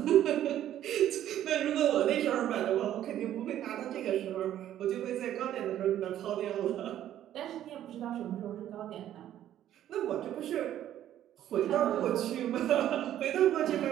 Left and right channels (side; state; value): left; quieter; 11.7 dB